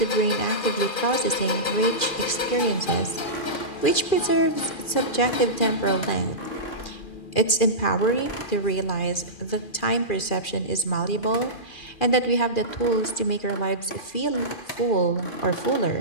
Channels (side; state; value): right; late; 2.4 ms